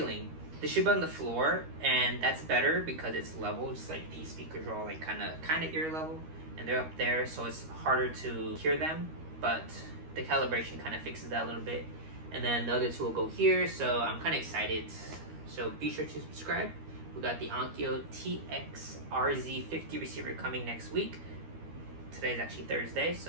They should be on the floor, and that's better because it's level, just like these speakers are all like kind of ear level, and they're up there, so it's harder to hear them. But the calibration kind of fixes that a little bit. And then the other 2 will go here, so I'm kind of excited. So be sure to subscribe. We got the Onkyo TX-RZ50 receiver coming next week. Today's actually Thursday,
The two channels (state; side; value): late; left; 13 ms